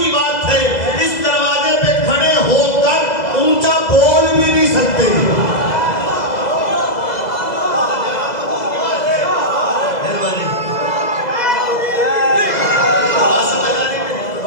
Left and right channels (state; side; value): late; right; 2.0 ms